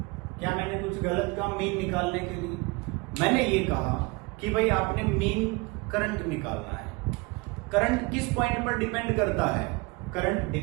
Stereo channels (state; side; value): quieter; left; 26.1 dB